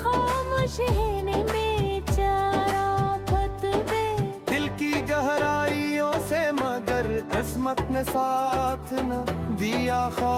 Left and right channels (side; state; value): both; identical; correlation 1.00